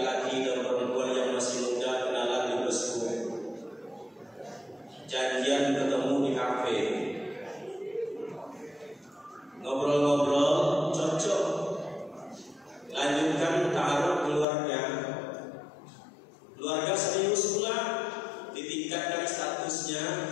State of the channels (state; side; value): drops out; right; at 14.5 s